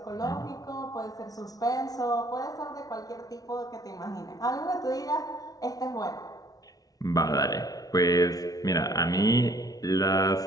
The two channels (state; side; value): late; right; 0.18 ms